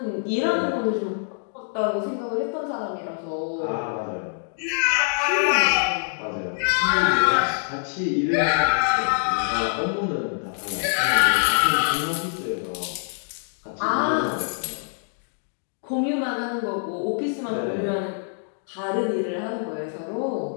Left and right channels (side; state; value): right; silent; digital silence